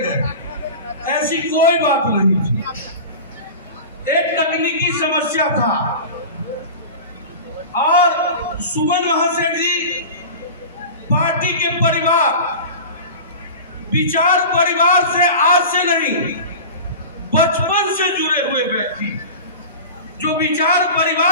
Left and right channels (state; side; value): inverted; both; correlation -0.33